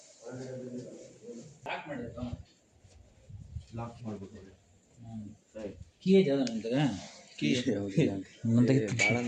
ಲಾಕ್ ಮಾಡ್ಬೇಕು. ಕೀ ಐತೆ ಅದು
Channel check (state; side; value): identical; both; correlation 1.00